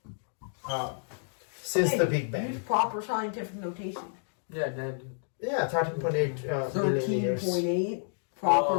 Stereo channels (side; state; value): right; silent; digital silence